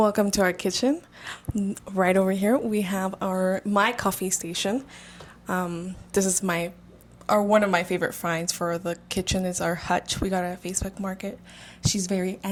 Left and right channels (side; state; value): both; identical; correlation 1.00